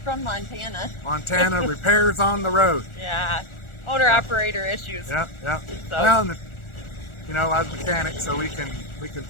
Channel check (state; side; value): late; right; 1.4 ms